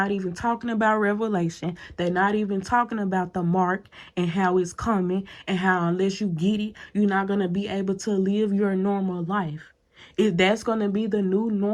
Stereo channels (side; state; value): both; identical; correlation 1.00